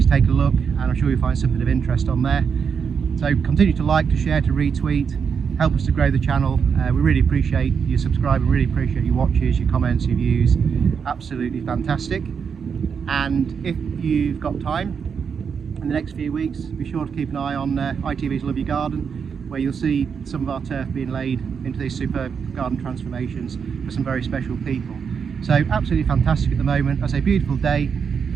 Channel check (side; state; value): left; quieter; 6.5 dB